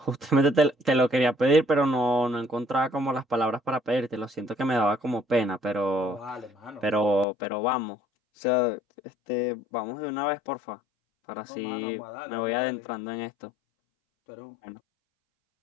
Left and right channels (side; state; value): right; drops out; at 7.2 s